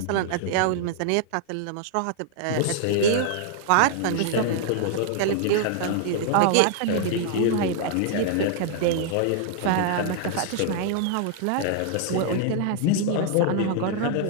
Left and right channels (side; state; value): both; different; correlation 0.00